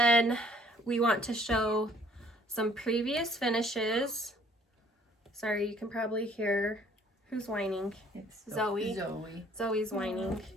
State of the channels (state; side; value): normal; both; correlation 0.59